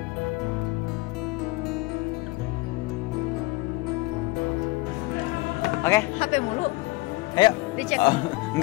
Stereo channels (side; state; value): right; quieter; 21.7 dB